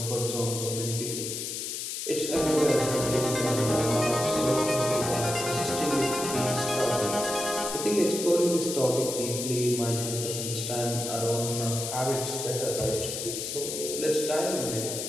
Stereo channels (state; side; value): noise; left; hiss, 4 dB below the sound